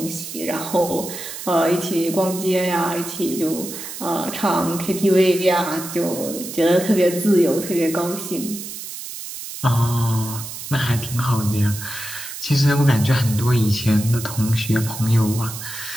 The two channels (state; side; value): noise; right; hiss, 10 dB below the sound